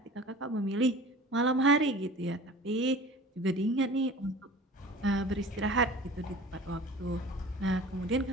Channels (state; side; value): normal; both; correlation 0.41